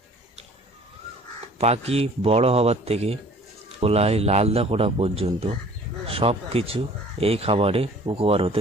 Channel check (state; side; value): normal; both; correlation 0.51